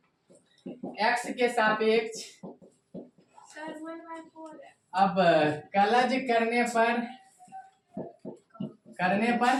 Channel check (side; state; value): both; identical; correlation 1.00